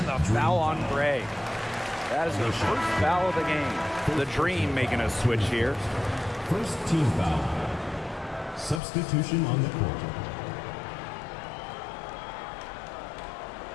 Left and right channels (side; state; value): right; drops out; at 8.8 s